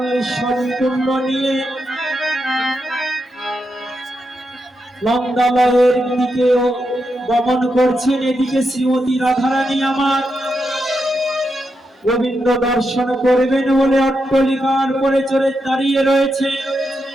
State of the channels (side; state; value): both; normal; correlation 0.85